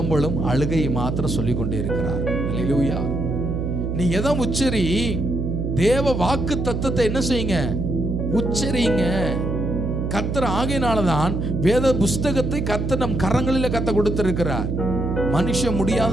அழுகை மாத்திரம் சொல்லிக் கொண்டே இருக்கிறார். அல்லேலூயா. நீ எதை உச்சரி, தேவ வாக்கு தத்தத்தை என்ன செய்யுங்க, உச்சரிங்க. கர்த்தர் ஆகையினாலதான் வேத புஸ்தகத்தை கர்த்தர் நம் கரங்களில் கத்த கொடுத்திருக்கிறார். மனுஷன்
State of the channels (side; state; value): right; noise; hum, 1 dB below the sound